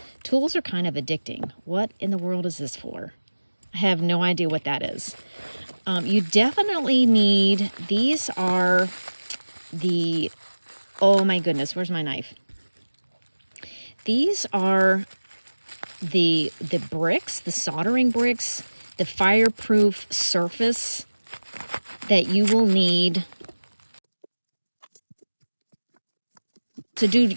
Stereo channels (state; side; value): inverted; both; correlation -1.00